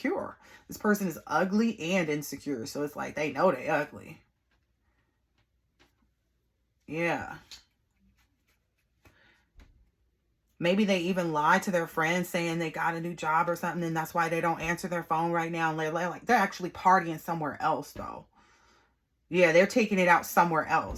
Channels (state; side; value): identical; both; correlation 1.00